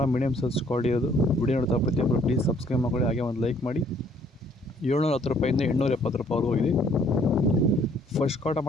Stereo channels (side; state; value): both; normal; correlation 0.62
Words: ಮೀಡಿಯಮ್ ಸೈಜ್ ಕ್ವಾಲಿಟಿ ಇರೋದು. ವಿಡಿಯೋ ನೋಡ್ತಾ ಪ್ರತಿಯೊಬ್ಬರು ಪ್ಲೀಸ್ ಸಬ್ಸ್ಕ್ರೈಬ್ ಮಾಡ್ಕೊಳ್ಳಿ, ಹಾಗೆ ಒಂದು ಲೈಕ್ ಮಾಡಿ. 710 ರೂಪಾಯಿಂದ 870 ರೂಪಾಯಿವರೆಗೂ ಹೋಗಿದೆ. ಫಸ್ಟ್ ಕ್ವಾರ್